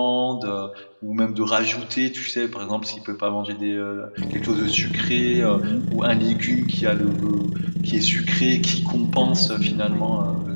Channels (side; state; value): both; inverted; correlation -1.00